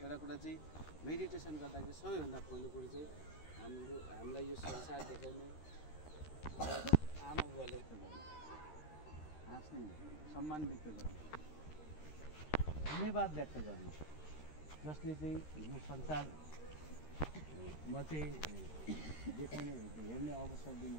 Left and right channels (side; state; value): right; late; 13 ms